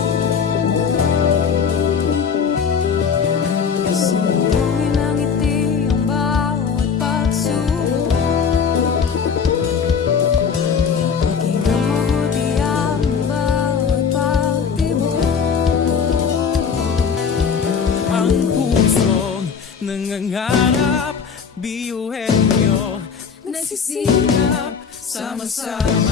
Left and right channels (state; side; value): quieter; right; 6.4 dB